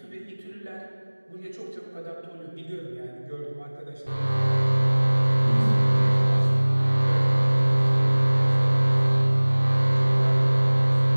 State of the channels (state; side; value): inverted; both; correlation -1.00